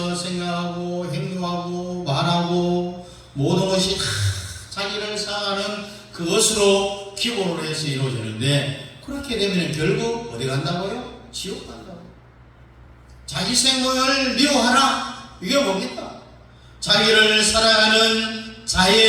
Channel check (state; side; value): identical; both; correlation 1.00